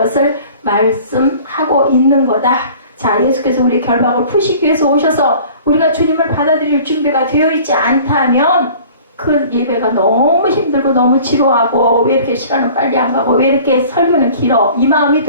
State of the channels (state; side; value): inverted; both; correlation -0.47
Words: 말씀하고 있는 거다. 자, 예수께서 우리 결박을 푸시기 위해서 오셔서 우리가 주님을 받아들일 준비가 되어 있지 않다면 그 예배가 너무 힘들고 너무 지루하고 왜 이렇게 시간은 빨리 안 가고 왜 이렇게 설교는 길어 이 마음이